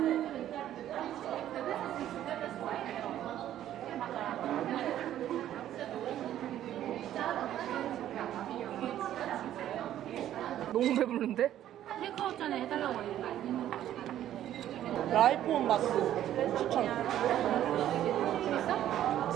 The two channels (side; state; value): left; quieter; 11.9 dB